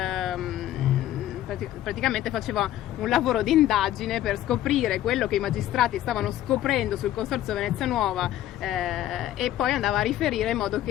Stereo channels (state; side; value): quieter; right; 13.1 dB